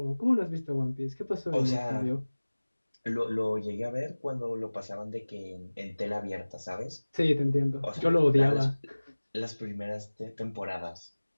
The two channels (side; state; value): both; inverted; correlation -1.00